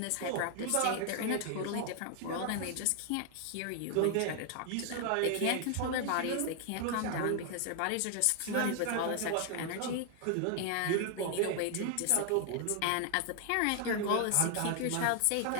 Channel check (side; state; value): both; different; correlation 0.00